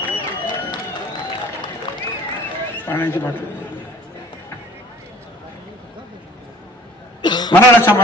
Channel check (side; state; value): both; normal; correlation 0.51